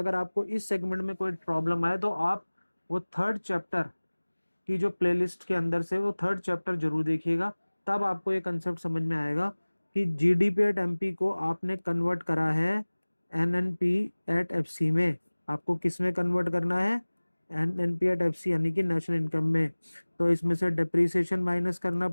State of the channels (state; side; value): inverted; both; correlation -1.00